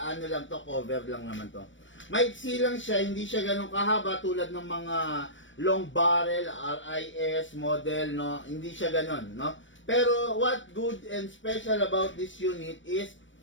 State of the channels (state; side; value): late; right; 0.56 ms